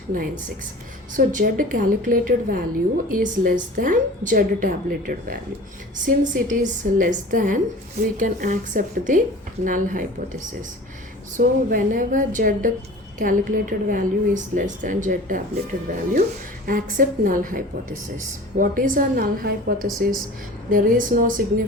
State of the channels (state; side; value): normal; both; correlation 0.40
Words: So Z calculated value is less than Z tabulated value. Since it is less than, we can accept the null hypothesis. So whenever Z calculated value is less than Z tabulated value, accept null hypothesis. What is a null hypothesis? There is no